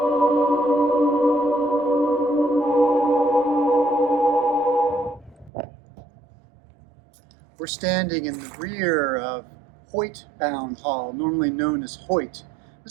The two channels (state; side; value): drops out; left; at 5.5 s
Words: We're standing in the rear of Hoyt Bound Hall, normally known as Hoyt.